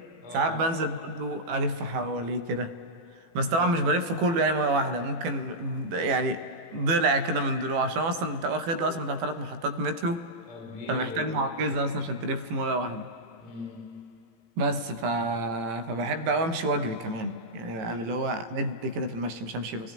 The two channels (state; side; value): late; left; 18 ms